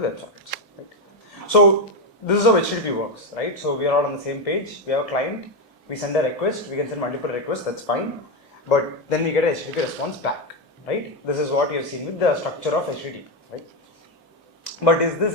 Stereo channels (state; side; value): normal; both; correlation 0.08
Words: with WebSockets, right? So this is how HTTP works, right? So we are all on the same page. We have a client. We send a request. We can send multiple requests. That's fine. But then we get a HTTP response back, right? This is what you have seen with the structure of HTTP, right? But is this